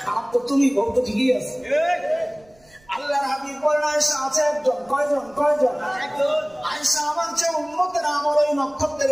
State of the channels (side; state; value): right; noise; rumble, 30 dB below the sound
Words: খারাপ তো তুমি, বউ তো ঠিকই আছে। আল্লাহর হাবিব বলেন আয়েশা আছে একজন। কয়জন? আয়েশা আমার চেয়ে উম্মতের আমল ওই